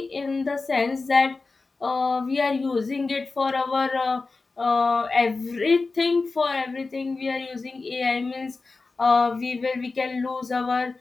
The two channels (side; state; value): right; quieter; 3.9 dB